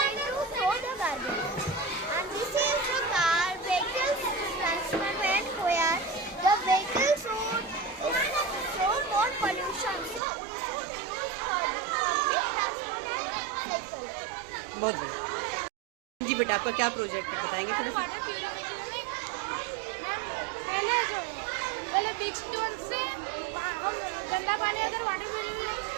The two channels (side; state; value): left; drops out; at 10.2 s